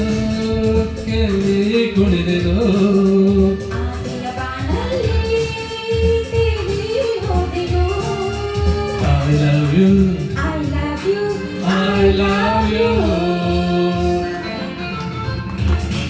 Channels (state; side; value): identical; both; correlation 1.00